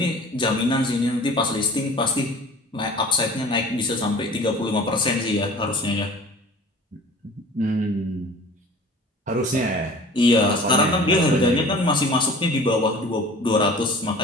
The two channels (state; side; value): normal; both; correlation 0.44